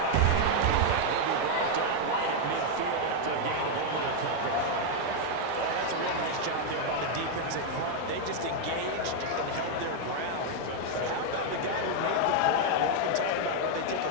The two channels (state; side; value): different; both; correlation 0.00